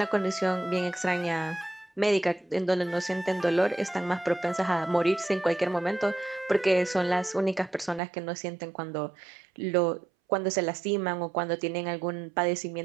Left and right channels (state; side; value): drops out; left; at 8.0 s